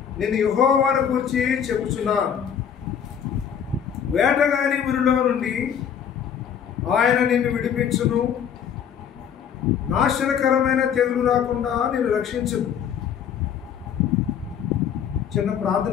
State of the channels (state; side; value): quieter; right; 8.3 dB